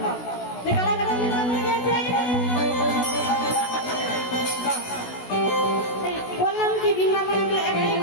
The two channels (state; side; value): late; right; 16 ms